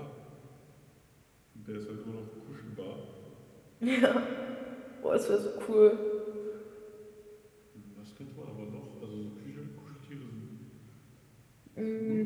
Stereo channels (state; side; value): identical; both; correlation 1.00